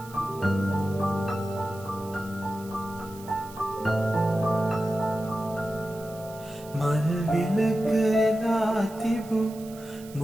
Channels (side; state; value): right; noise; hiss, 20 dB below the sound